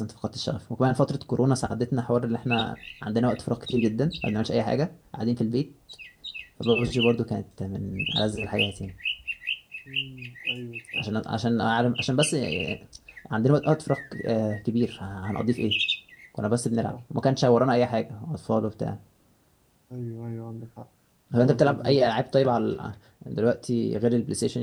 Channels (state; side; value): identical; both; correlation 1.00